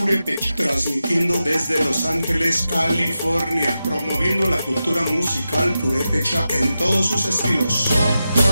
transmitiendo desde Los Ángeles, California, promoviendo la cultura musical purepecha en todos sus estilos.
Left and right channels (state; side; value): inverted; both; correlation -0.91